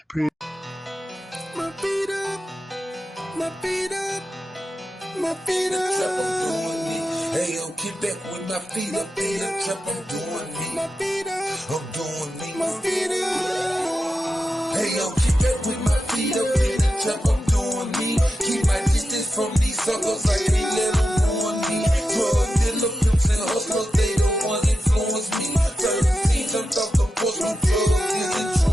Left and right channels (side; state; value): both; normal; correlation 0.90